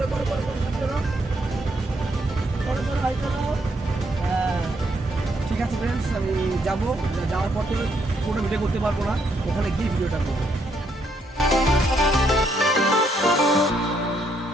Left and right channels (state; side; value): normal; both; correlation 0.74